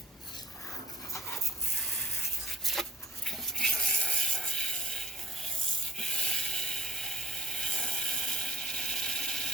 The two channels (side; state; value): both; normal; correlation 0.57